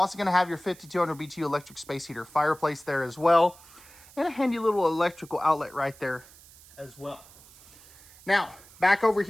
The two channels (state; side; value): noise; right; hiss, 23 dB below the sound